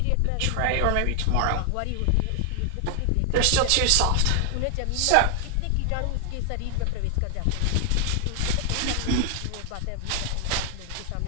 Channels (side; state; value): both; different; correlation 0.00